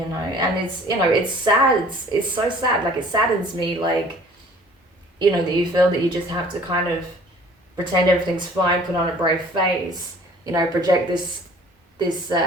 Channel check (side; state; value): both; normal; correlation 0.51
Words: it's sad. It's so sad. Like, it saddens me, like, that you feel that you just have to kind of pretend everything's fine, put on a brave face, project this